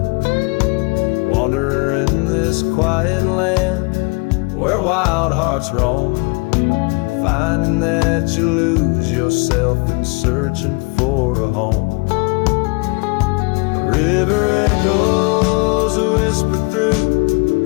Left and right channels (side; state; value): right; quieter; 30.1 dB